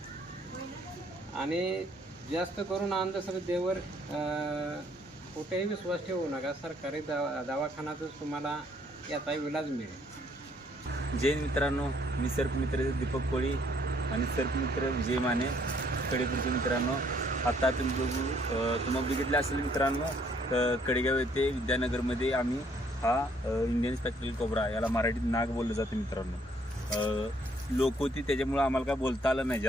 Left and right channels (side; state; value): both; normal; correlation 0.65